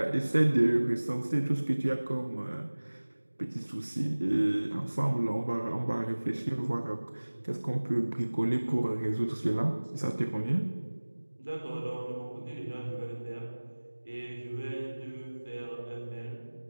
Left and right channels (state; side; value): inverted; both; correlation -1.00